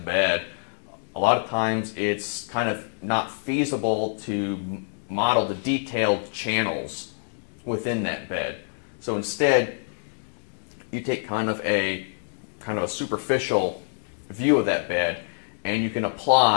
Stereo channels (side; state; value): right; silent; 61 dB below the other